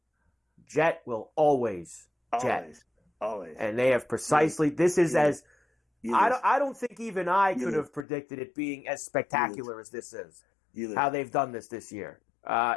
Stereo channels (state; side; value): drops out; right; at 8.1 s